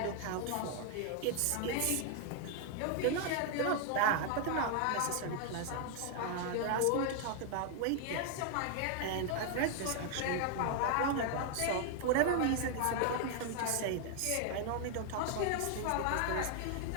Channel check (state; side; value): different; both; correlation 0.00